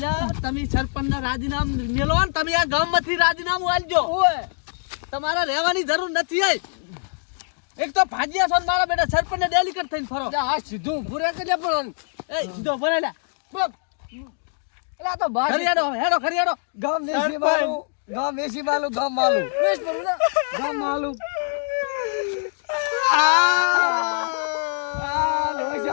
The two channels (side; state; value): right; silent; 61 dB below the other